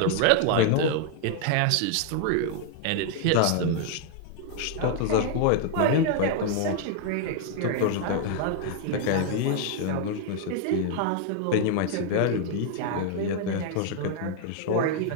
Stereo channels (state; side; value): different; both; correlation 0.00